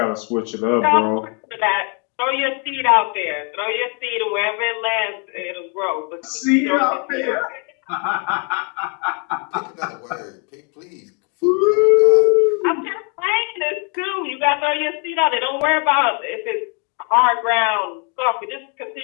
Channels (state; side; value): quieter; right; 37.2 dB